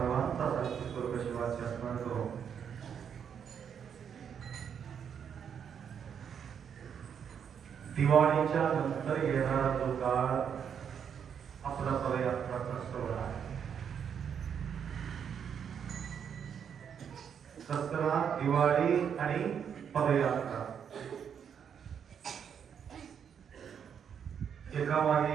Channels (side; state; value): left; quieter; 7.8 dB